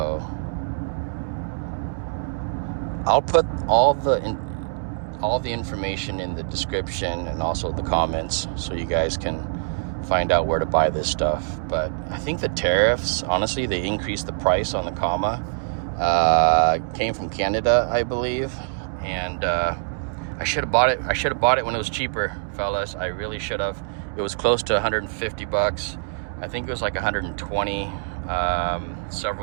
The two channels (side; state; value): left; silent; digital silence